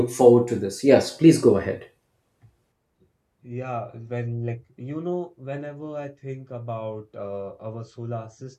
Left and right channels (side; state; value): both; identical; correlation 1.00